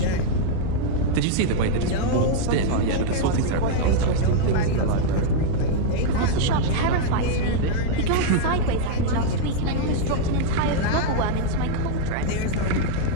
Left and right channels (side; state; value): both; different; correlation -0.01